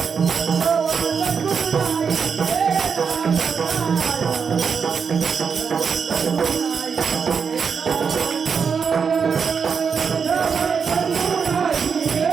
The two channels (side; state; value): left; quieter; 6.2 dB